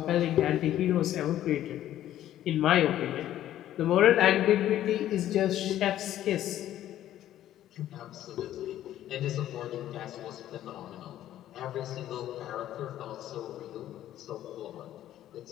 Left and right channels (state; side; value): quieter; right; 12.5 dB